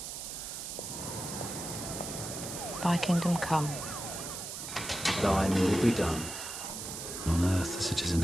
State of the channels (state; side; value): noise; right; hiss, 7 dB below the sound